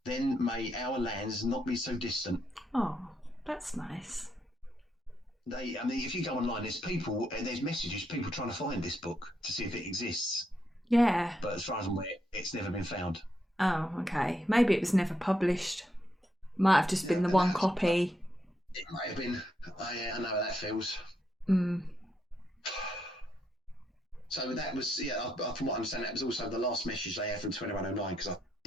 Then may our lands not be so distant." Oh, that's nice. If you go online, there's messages, people trying to find this book to see if it exists. Yeah. But as far as I'm aware, it's never been found. Oh, okay. Maybe it was never published. Might have just been the one copy. It might have been. I know how that feels. So that was, from what I understand, that was also the last message they had from 2109, because I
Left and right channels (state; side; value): normal; both; correlation 0.79